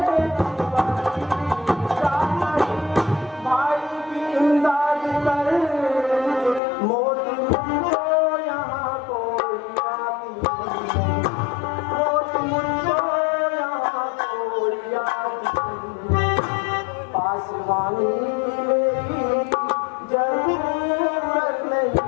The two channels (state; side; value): drops out; right; at 6.6 s